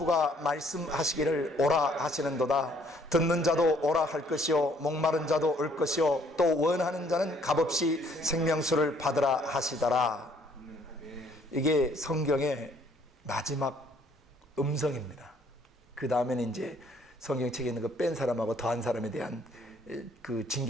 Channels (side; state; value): both; normal; correlation 0.63